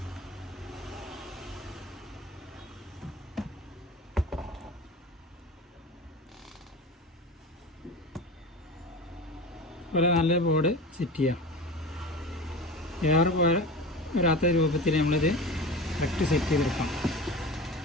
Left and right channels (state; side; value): normal; both; correlation 0.31